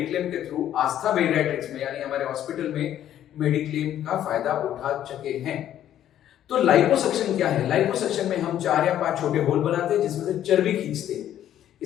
के थ्रू आस्था बेरियाट्रिक्स में यानी हमारे हॉस्पिटल में मेडिक्लेम का फायदा उठा चुके हैं। तो लाइपोसक्शन क्या है? लाइपोसक्शन में हम 4 या 5 छोटे होल बनाते हैं जिसमें से चर्बी खींचते हैं।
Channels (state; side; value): quieter; right; 11.3 dB